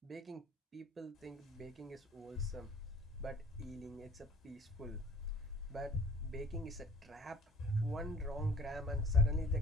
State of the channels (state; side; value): normal; both; correlation 0.50